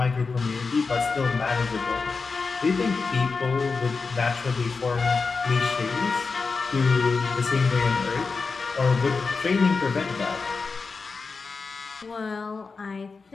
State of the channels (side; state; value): right; quieter; 4.5 dB